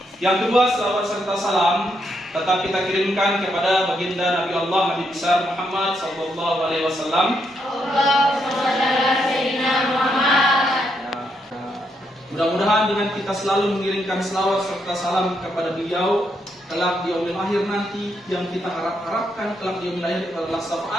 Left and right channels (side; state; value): both; normal; correlation 0.78